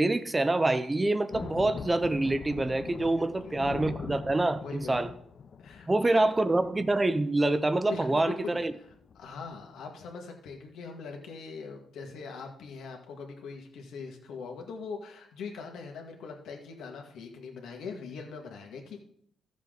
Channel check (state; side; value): normal; both; correlation 0.95